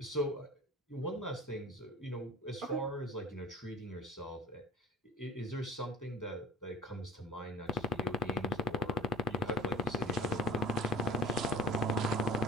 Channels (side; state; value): both; normal; correlation 0.43